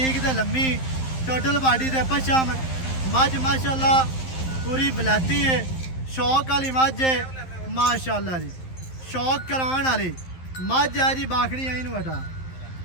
ਤੇ ਲੰਮੀ, ਟੋਟਲ ਬਾਡੀ ਦੇ ਪਛਮ। ਮੱਝ ਮਾਸ਼ਾਅੱਲਾ ਪੂਰੀ ਬਲਾਤੀ ਹੈ, ਸ਼ੌਕ ਵਾਲੀ ਮੱਝ ਹੈ ਮਾਸ਼ਾਅੱਲਾ ਜੀ। ਸ਼ੌਕ ਕਰਾਉਣ ਵਾਲੀ ਮੱਝ ਹੈ ਜੀ। ਬਾਖੜੀ ਆਈ ਨੂੰ ਹਟਾ,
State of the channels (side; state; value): right; late; 11 ms